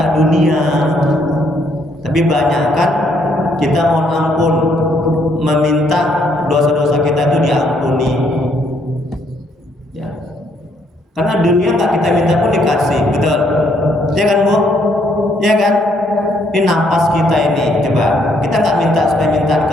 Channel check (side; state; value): both; normal; correlation 0.70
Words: dunia. Tapi banyakkan kita mohon ampun, meminta dosa-dosa kita itu diampuni. Ya. Karena dunia nggak kita minta pun dikasih, betul? Ya kan Bu? Ya kan? Ini napas kita ini, coba kita nggak minta supaya minta